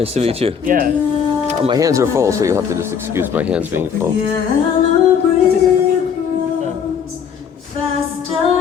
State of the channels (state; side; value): quieter; right; 7.2 dB